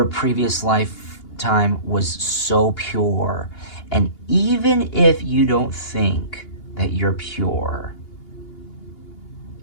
previous lifetime was so pure, and even if you don't think that you're pure,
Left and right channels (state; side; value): late; right; 2.8 ms